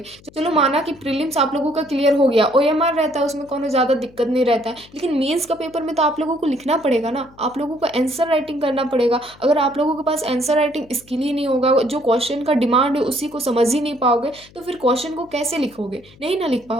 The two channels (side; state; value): left; noise; hum, 25 dB below the sound